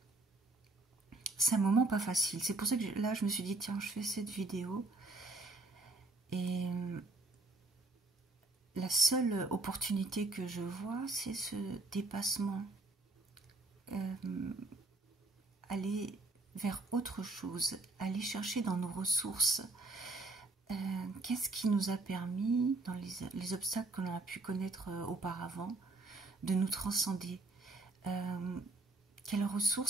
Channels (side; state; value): left; quieter; 3.2 dB